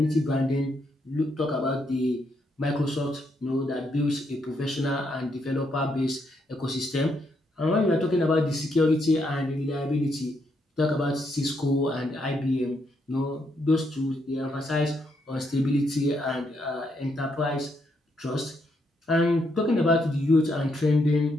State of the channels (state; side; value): normal; both; correlation 0.77